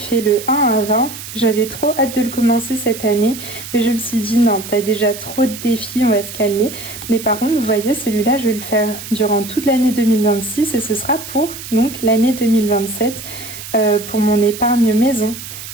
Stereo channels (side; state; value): right; noise; hiss, 11 dB below the sound